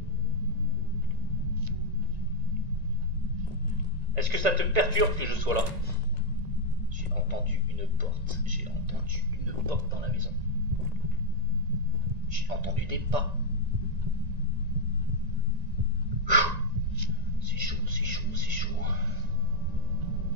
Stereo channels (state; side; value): late; left; 1.9 ms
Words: Est-ce que ça te perturbe que je sois là? J'ai entendu une porte. J'ai entendu une porte dans la maison. J'ai entendu des pas. C'est chaud, c'est chaud, c'est chaud.